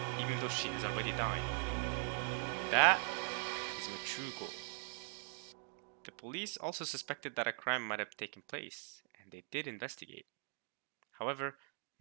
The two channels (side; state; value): left; silent; 50 dB below the other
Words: even though she has already died. That is my true goal. The police also suspected that a crime might have taken place, and they did investigate. However,